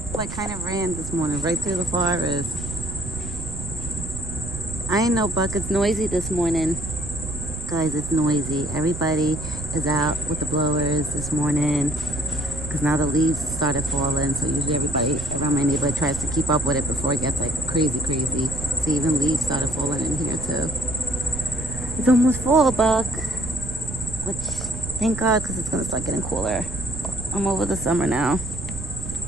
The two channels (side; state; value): right; noise; rumble, 8 dB below the sound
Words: like kind of ran this morning right through the forest. I ain't know, Buck. It's noisy this morning. Guys, it's noisy. Everybody is out with the blowers this morning because now the leaves started falling. So usually everybody around my neighborhood tries to keep up with it before it gets like crazy. So even leaves started falling in here too. It's almost fall, Buck. Which, thank God, because it's going to start getting cooler. I'm over the summer now.